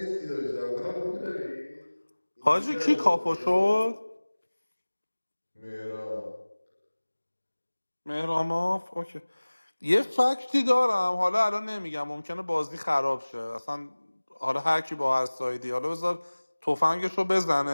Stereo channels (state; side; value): inverted; both; correlation -1.00